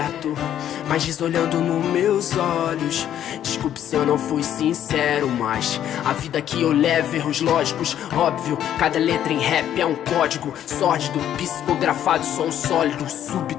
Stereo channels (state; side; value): quieter; right; 10.7 dB